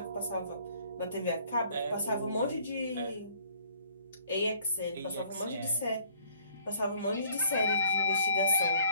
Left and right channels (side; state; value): both; inverted; correlation -0.59